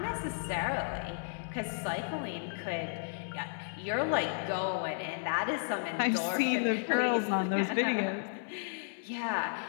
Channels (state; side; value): silent; right; 56 dB below the other